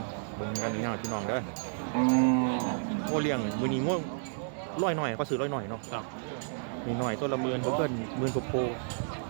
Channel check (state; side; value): silent; left; digital silence